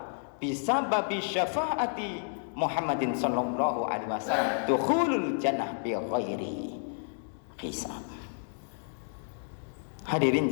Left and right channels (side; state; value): right; silent; digital silence